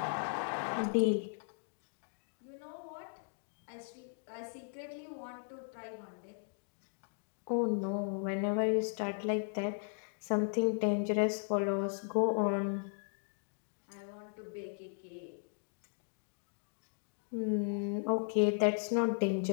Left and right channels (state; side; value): silent; right; digital silence